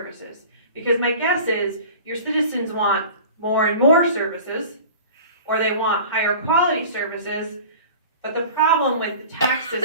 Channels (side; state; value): both; inverted; correlation -0.40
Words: Because my guess is your citizens want more and more services, or they want higher quality services, but the problem with the tax